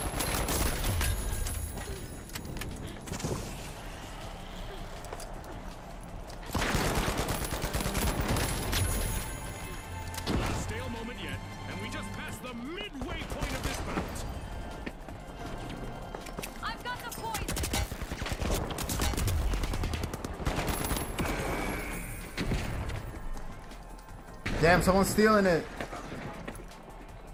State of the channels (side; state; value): both; identical; correlation 1.00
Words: Not a stale moment yet, and we just passed the midway point of this bout. I've got the point. Damn, someone's stealing it.